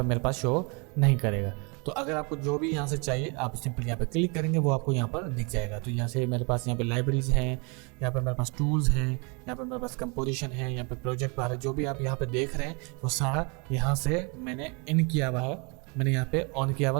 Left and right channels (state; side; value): quieter; left; 32.5 dB